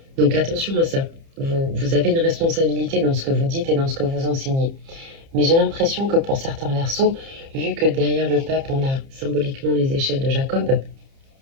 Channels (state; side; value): late; left; 30 ms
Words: Donc attention à ça. Vous avez une responsabilité dans ce que vous dites et dans ce que vous enseignez. Mais j'ai l'impression que pour certains Verseaux, vu que derrière le pape, on a symboliquement les échelles de Jacob,